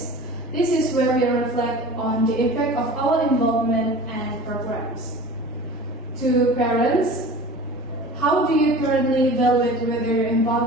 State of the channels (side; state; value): both; normal; correlation 0.40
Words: This is where we reflect on the impact of our involvement and programs. To parents, how do you currently evaluate whether your